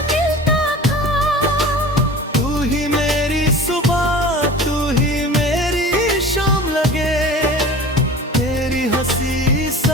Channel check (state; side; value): normal; both; correlation 0.39